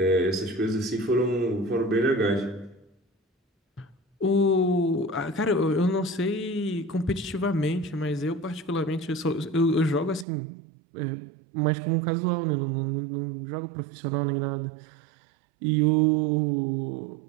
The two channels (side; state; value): left; drops out; at 10.2 s